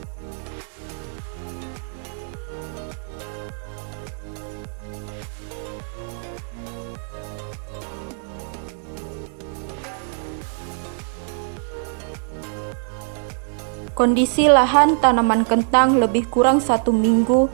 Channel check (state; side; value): silent; left; 62 dB below the other